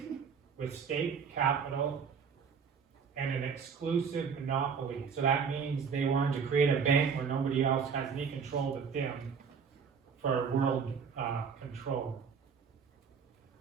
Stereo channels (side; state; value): left; quieter; 6.2 dB